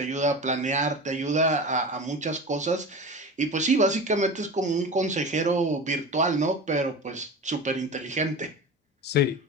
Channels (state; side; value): normal; both; correlation 0.30